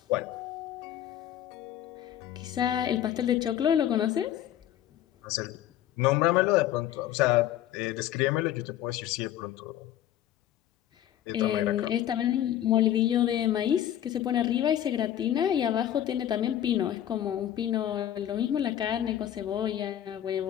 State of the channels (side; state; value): right; quieter; 11.6 dB